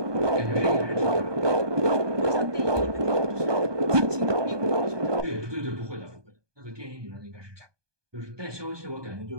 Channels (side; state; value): left; late; 1.2 ms